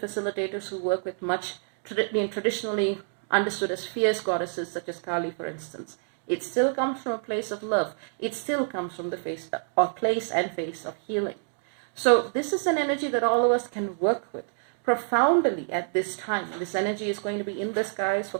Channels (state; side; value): silent; left; digital silence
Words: who work with much traditionally understood as fierce goddesses, such as Kali, for instance. It still comes from a place of love. It still comes from the place and face of healing. So this is an energy that all of us can work with profoundly at this time. This energy is going to be in the skies for